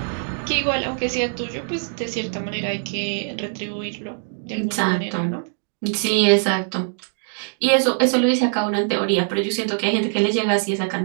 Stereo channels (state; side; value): silent; left; 64 dB below the other